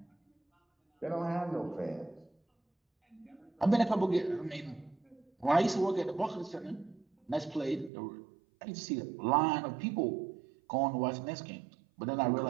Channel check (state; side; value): drops out; left; at 7.9 s